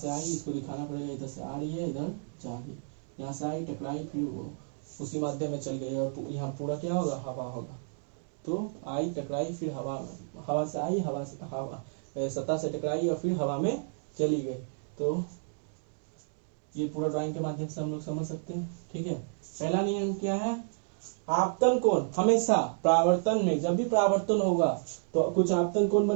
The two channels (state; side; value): silent; left; digital silence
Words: आई, इसको दिखाना पड़ेगा, इधर से आ रही है, इधर जा रही है, यहाँ से आई, टकराई, फिर वो उसी माध्यम में चल गई और यहाँ पूरा क्या होगा, हवा होगा। तो आई, टकराई, फिर हवा से आई, हवा सतह से टकराई और फिर हवा में चली गई। तो ये पूरा ड्राइंग के माध्यम से हम लोग समझ सकते हैं। ठीक है, पहला नियम क्या है, आपतन कोण हमेशा परावर्तन में, जब भी परावर्तन होगा तो कुछ आपतन कोण